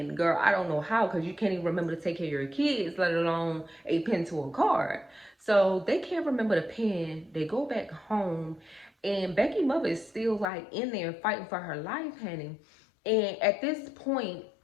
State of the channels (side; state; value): right; drops out; at 10.5 s